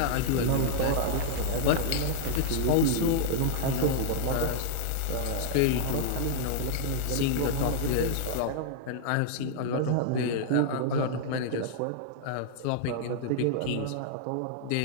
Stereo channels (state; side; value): different; both; correlation -0.01